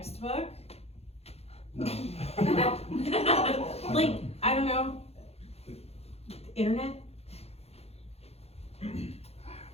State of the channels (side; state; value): right; late; 0.30 ms